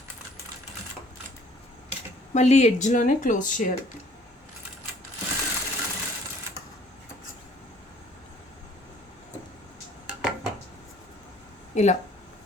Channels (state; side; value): normal; both; correlation 0.57